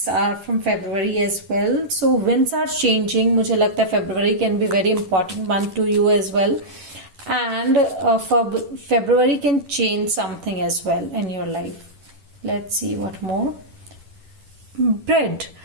are from February as well. So winds are changing. मुझे लगता है February can be very important month to you as well. And for February can change something as well in your life. Let's see what more. Bread.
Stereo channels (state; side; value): late; left; 10 ms